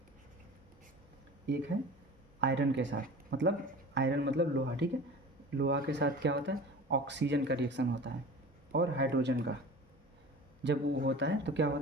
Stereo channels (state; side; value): normal; both; correlation 0.38